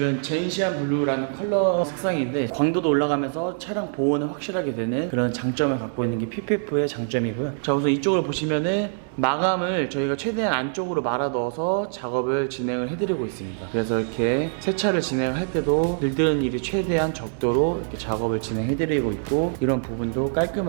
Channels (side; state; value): left; silent; 61 dB below the other